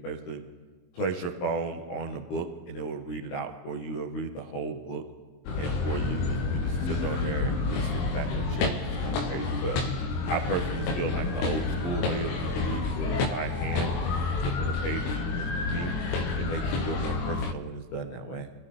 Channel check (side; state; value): right; late; 23 ms